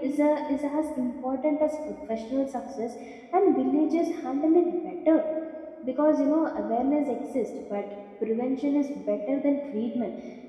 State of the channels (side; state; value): both; identical; correlation 1.00